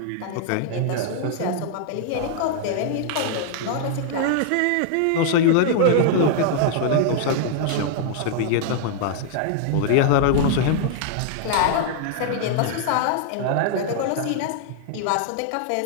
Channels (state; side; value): different; both; correlation -0.01